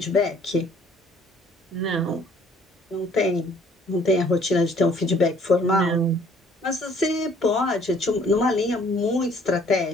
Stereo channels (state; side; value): normal; both; correlation 0.59